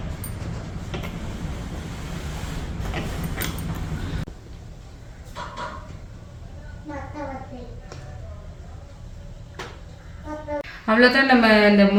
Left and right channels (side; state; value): both; identical; correlation 1.00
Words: அவ்வளோதான். நம்ம இந்த